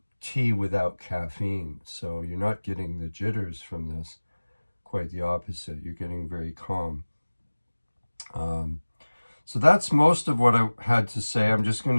tea without caffeine. So you're not getting the jitters from this. Quite the opposite. You're getting very calm. So that's most of what I had to say. I'm just going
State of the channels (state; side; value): inverted; both; correlation -1.00